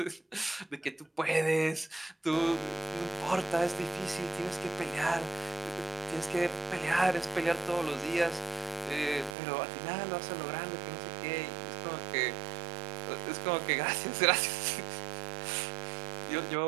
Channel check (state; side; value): drops out; left; at 9.3 s